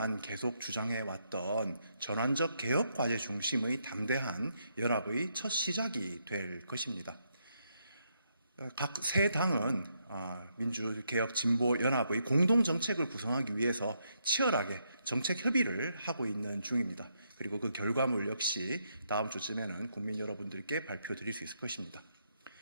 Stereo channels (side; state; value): both; inverted; correlation -0.78